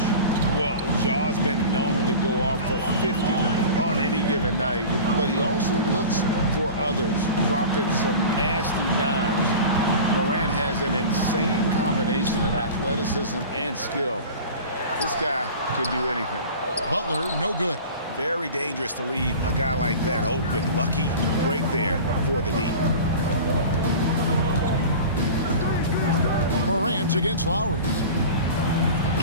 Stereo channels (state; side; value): inverted; both; correlation -0.36